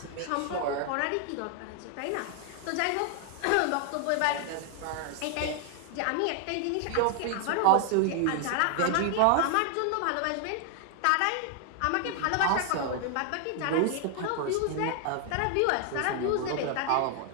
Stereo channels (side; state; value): both; different; correlation 0.00